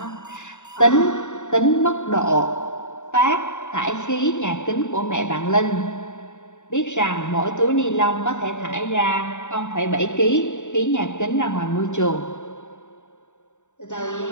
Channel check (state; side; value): late; right; 0.84 ms